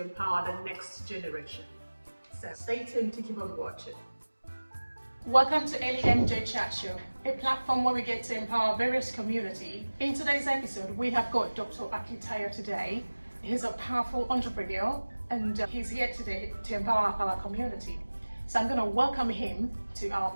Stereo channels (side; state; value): both; inverted; correlation -1.00